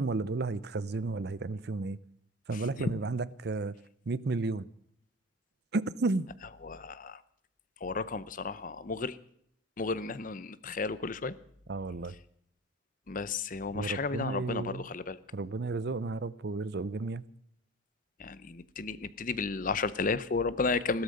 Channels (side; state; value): both; normal; correlation 0.33